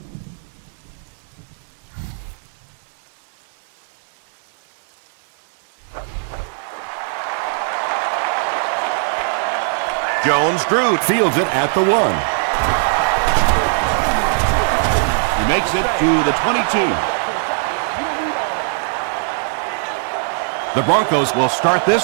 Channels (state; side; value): silent; left; 62 dB below the other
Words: Jones-Drew fields it at the 1. He makes it to the 22. The Broncos will start this